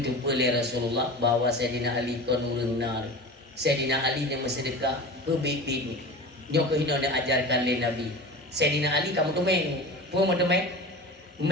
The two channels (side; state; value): both; normal; correlation 0.32